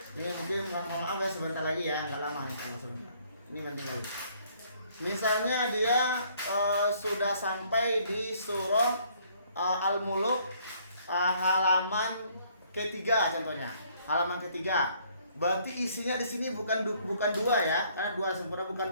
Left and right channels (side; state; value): both; inverted; correlation -0.64